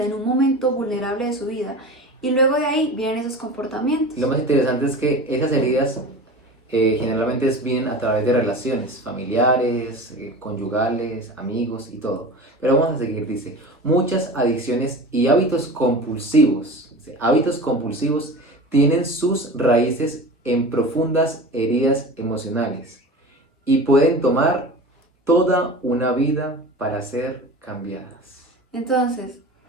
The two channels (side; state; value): both; normal; correlation 0.34